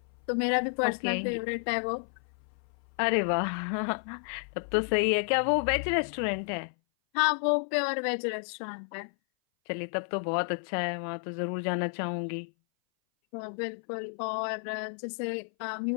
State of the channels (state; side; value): silent; right; 57 dB below the other